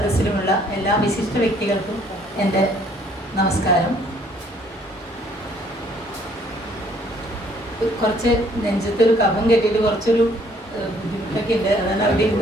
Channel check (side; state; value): both; normal; correlation 0.62